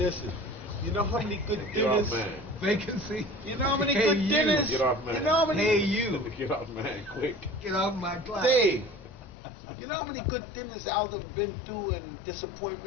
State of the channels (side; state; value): right; drops out; at 9.3 s